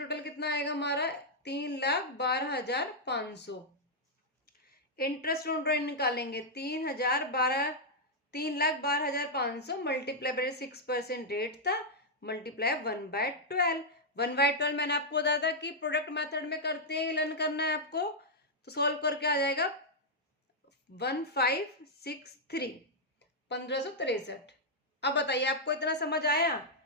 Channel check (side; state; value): both; normal; correlation -0.05